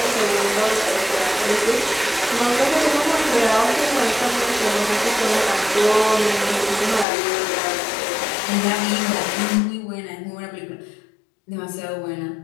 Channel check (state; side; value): drops out; right; at 7.1 s